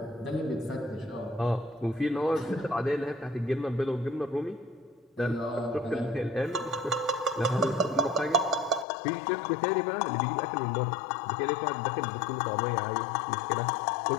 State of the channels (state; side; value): drops out; right; at 8.8 s